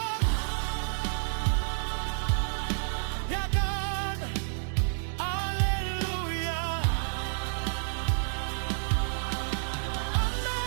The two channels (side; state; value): left; silent; 58 dB below the other